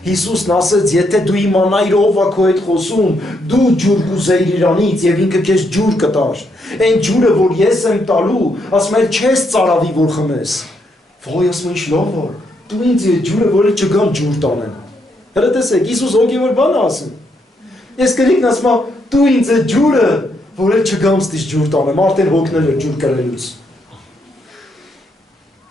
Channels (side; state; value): both; normal; correlation 0.77